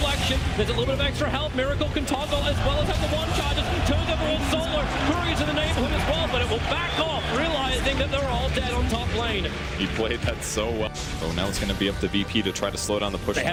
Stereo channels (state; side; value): identical; both; correlation 1.00